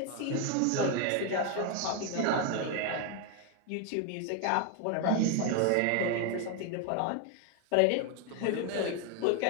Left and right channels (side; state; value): both; different; correlation 0.01